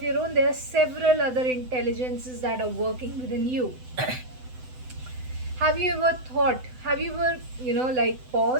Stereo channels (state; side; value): late; left; 7.9 ms